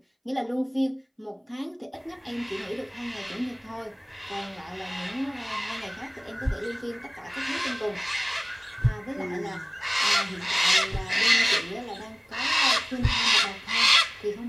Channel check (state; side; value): identical; both; correlation 1.00